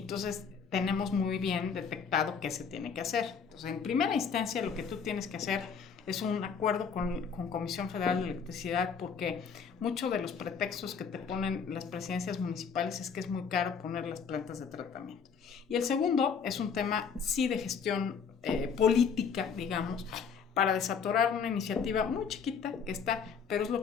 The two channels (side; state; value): right; quieter; 6.3 dB